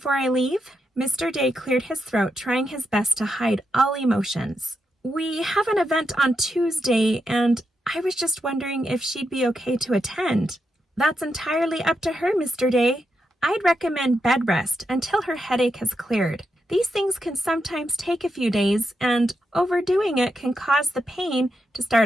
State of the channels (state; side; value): normal; both; correlation 0.84